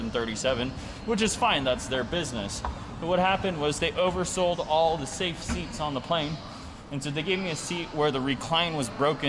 which is fine, that's their business. But what happened was they oversold all the safe seats on the plane. And so they gave me a seat where the recline was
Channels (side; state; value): both; identical; correlation 1.00